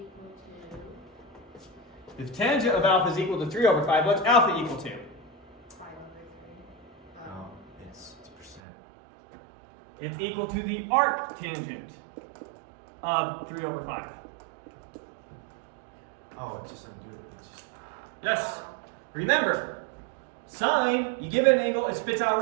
to If tangent of alpha is equal to 3 over 5, what's alpha equal to? 5 over 3. No, it's percent. It's equal to the arc tangent of 3 over 5. Oh, it's just something to do with it. Yes. Remember, sine, you give it an angle, it spits out a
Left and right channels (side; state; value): left; drops out; at 8.6 s